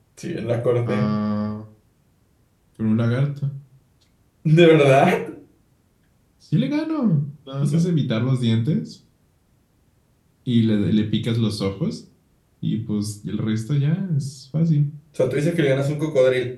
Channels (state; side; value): identical; both; correlation 1.00